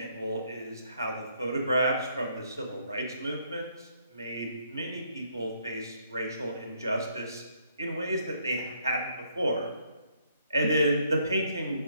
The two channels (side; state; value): both; inverted; correlation -0.70